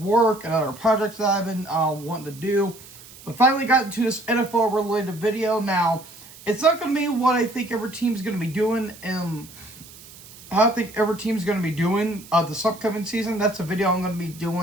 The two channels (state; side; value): noise; right; hiss, 19 dB below the sound